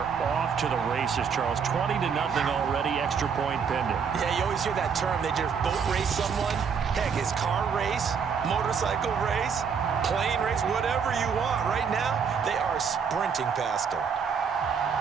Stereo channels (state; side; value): quieter; left; 6.5 dB